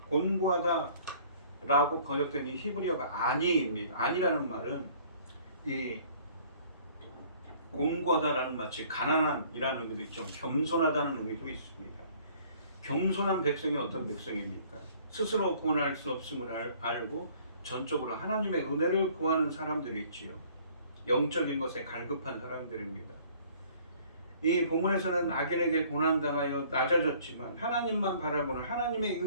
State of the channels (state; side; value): inverted; both; correlation -0.55